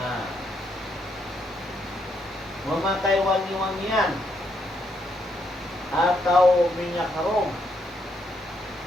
memakai wangi-wangian atau minyak harum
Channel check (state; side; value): normal; both; correlation 0.76